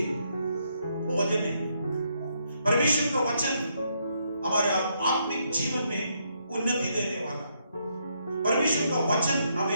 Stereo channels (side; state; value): both; inverted; correlation -0.76